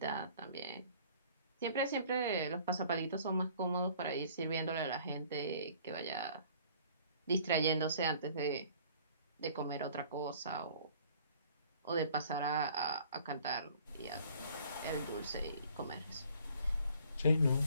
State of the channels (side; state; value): both; inverted; correlation -0.54